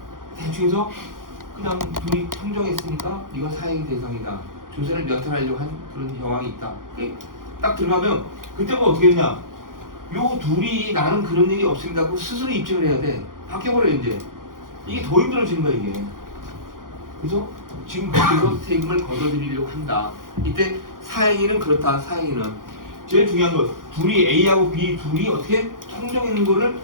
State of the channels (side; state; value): left; late; 0.90 ms